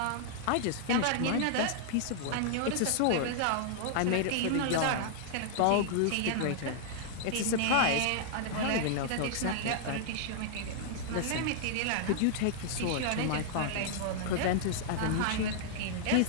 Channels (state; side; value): different; both; correlation -0.01